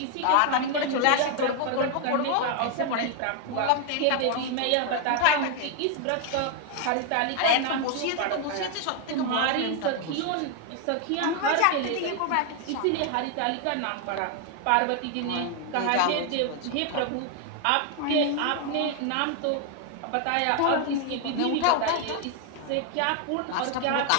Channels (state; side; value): different; both; correlation 0.00